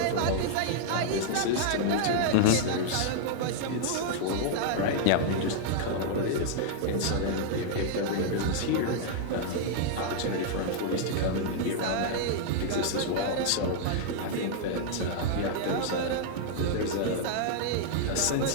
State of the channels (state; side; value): different; both; correlation -0.01